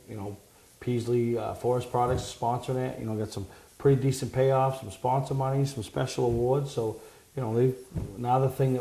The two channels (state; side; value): identical; both; correlation 1.00